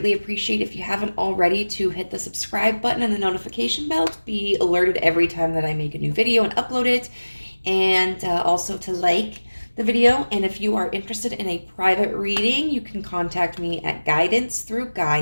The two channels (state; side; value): inverted; both; correlation -1.00